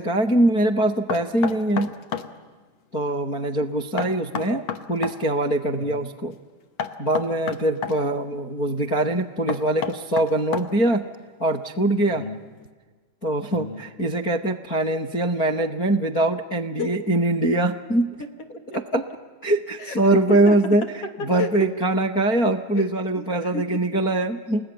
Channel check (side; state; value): right; late; 4.4 ms